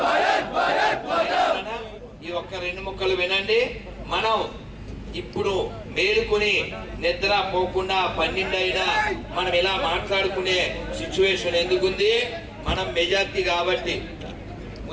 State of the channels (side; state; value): both; identical; correlation 1.00